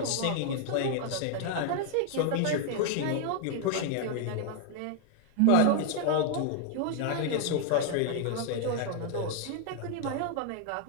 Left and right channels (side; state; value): both; different; correlation 0.00